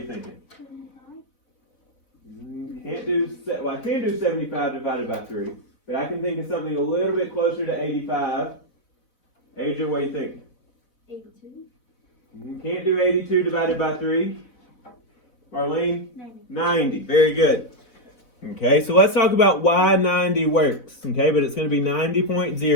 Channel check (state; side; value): late; right; 4.0 ms